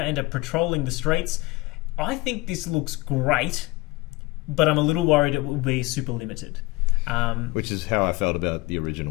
are patrolling the streets. I think this looks great, but I'm a little worried it will be super limited. Which is how I felt about the original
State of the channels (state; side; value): quieter; right; 21.9 dB